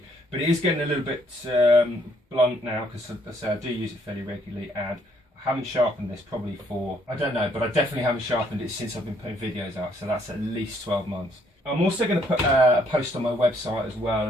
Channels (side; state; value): both; normal; correlation 0.68